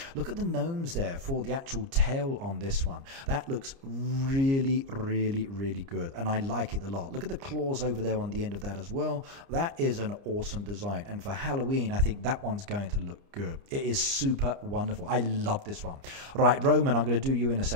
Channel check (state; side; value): late; left; 29 ms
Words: Look at the gnomes there for the actual tail on this one. That looks really, really, really good, and I like it a lot. Look at the claws over there on the end of that as well. That is an awesome design, and for Halloween I think that one's going to look good. It is super wonderful. I love this one. Right, Roman, I'm going to do you in a